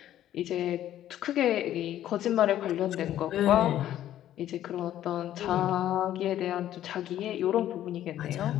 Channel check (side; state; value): right; quieter; 12.2 dB